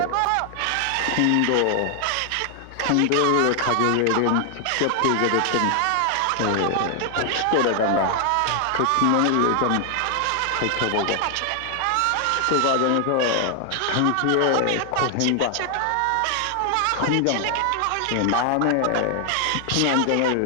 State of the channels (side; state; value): both; different; correlation 0.00